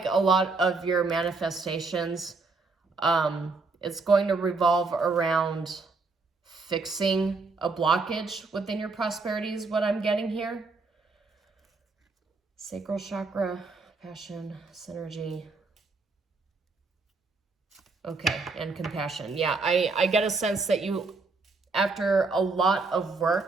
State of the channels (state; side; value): quieter; left; 4.0 dB